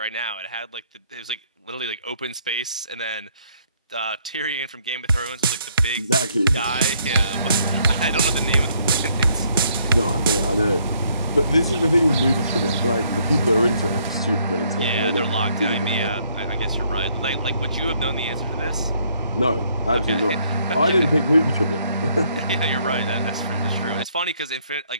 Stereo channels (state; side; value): inverted; both; correlation -0.68